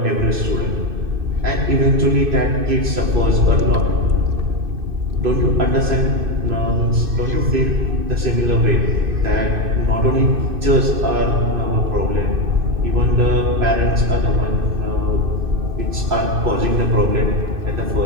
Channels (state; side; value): late; left; 2.6 ms